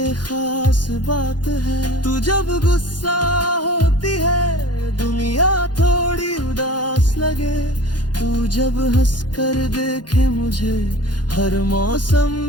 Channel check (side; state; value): right; late; 0.70 ms